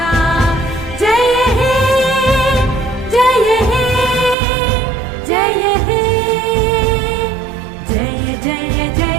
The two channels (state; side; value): drops out; left; at 4.4 s